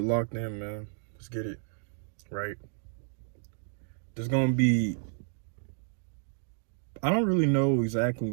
locked in, man. Let's get it, right? There's gonna be, I don't really know exactly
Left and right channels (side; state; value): left; silent; digital silence